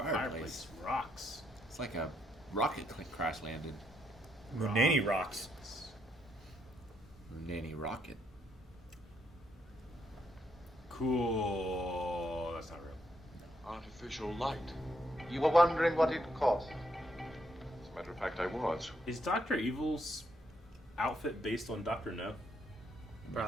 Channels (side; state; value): both; normal; correlation 0.76